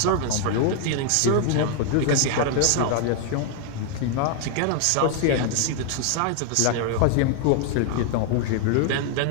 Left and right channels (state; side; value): different; both; correlation 0.00